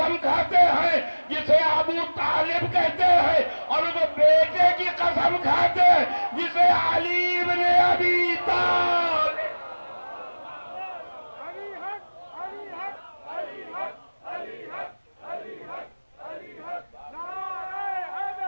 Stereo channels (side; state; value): both; inverted; correlation -1.00